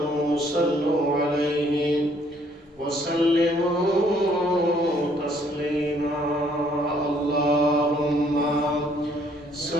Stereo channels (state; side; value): normal; both; correlation 0.64